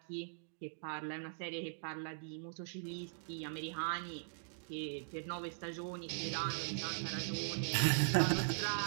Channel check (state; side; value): silent; left; digital silence